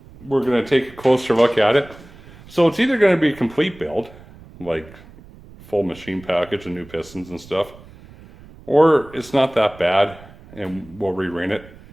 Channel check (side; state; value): right; noise; rumble, 21 dB below the sound